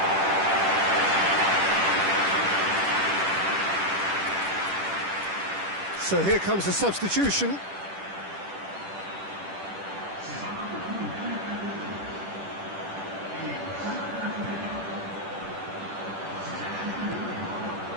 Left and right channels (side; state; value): left; late; 10 ms